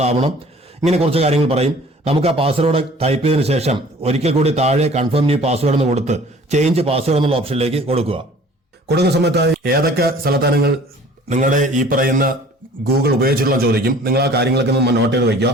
ഇങ്ങനെ കുറച്ച് കാര്യങ്ങൾ പറയും. നമുക്ക് ആ പാസ്വേഡ് ടൈപ്പ് ചെയ്തതിനു ശേഷം ഒരിക്കൽ കൂടി താഴെ കൺഫേം ന്യൂ പാസ്വേഡ് എന്ന് കൊടുത്ത് ചേഞ്ച് പാസ്വേഡ് എന്നുള്ള ഓപ്ഷനിലേക്ക് കൊടുക്കുക. കൊടുക്കുന്ന സമയത്തായി ഏതൊക്കെ സ്ഥലത്താണ് നിങ്ങളുടെ ഈ പറയുന്ന ഗൂഗിൾ ഉപയോഗിച്ചിട്ടുള്ള ചോദിക്കും. നിങ്ങൾ ആ കാര്യങ്ങളൊക്കെ നോട്ട് ചെയ്ത് വയ്ക്കുക.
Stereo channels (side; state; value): both; normal; correlation 0.50